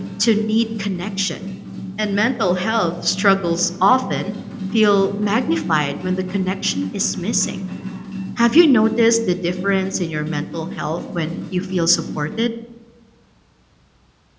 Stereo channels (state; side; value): identical; both; correlation 1.00